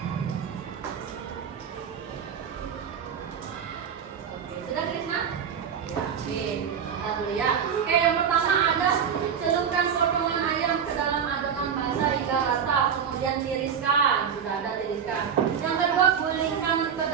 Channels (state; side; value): quieter; left; 7.5 dB